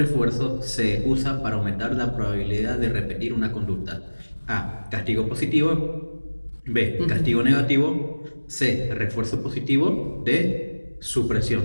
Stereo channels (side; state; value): both; inverted; correlation -1.00